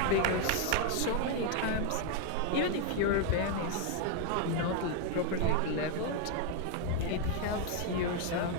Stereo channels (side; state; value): both; different; correlation 0.00